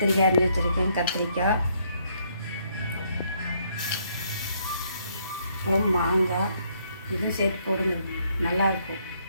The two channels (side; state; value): both; inverted; correlation -0.70